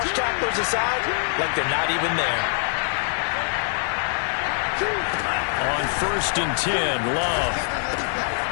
tacklers aside like they're not even there. On 1st and 10, Love.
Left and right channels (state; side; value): silent; right; 63 dB below the other